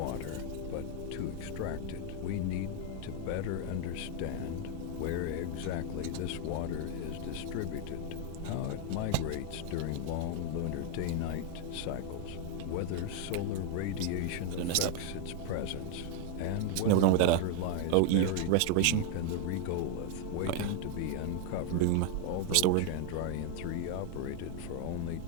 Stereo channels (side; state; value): both; different; correlation 0.01